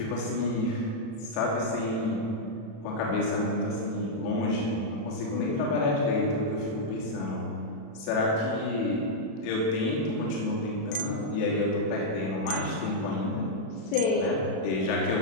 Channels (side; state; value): right; late; 36 ms